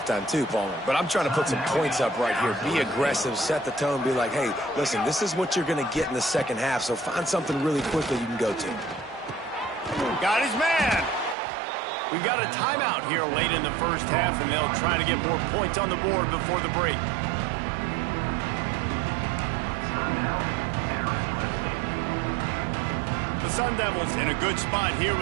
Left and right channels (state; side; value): drops out; left; at 11.4 s